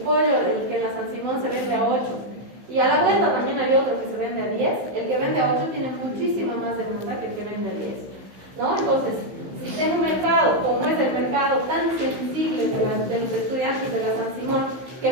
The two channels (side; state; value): left; late; 15 ms